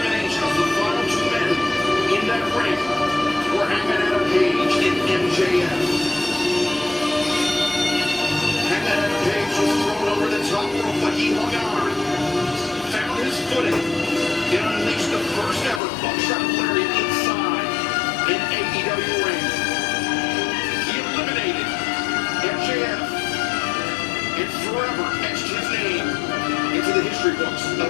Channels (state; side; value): drops out; right; at 15.8 s